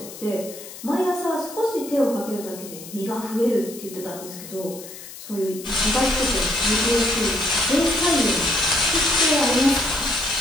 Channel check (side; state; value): left; noise; hiss, 14 dB below the sound